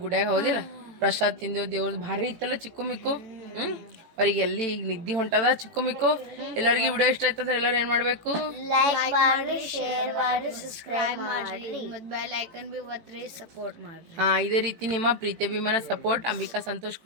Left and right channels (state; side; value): late; left; 18 ms